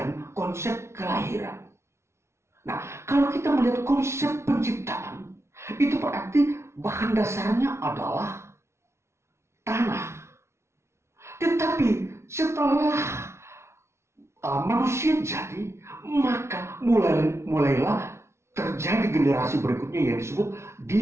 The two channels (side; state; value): left; late; 0.13 ms